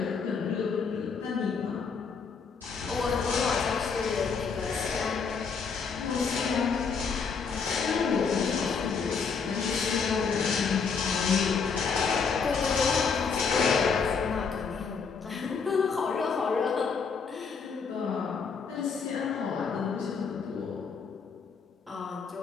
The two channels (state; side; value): quieter; right; 5.5 dB